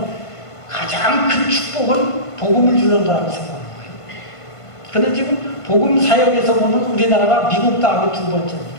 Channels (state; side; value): late; right; 1.5 ms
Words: 가장 큰 축복은 복음을 주는 거라고 생각하는 거예요. 그런데 지금 복음 사역에서 보면 우리나라가 미국 다음에 두 번째입니다.